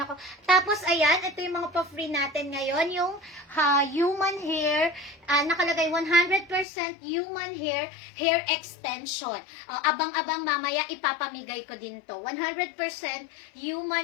ako. Tapos, ayan, ito yung mga pa-free natin ngayon. Yung human hair, nakalagay 100% human hair extension. Abang-abang mamaya, ipapamigay ko din to. 100%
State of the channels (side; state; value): right; drops out; at 6.7 s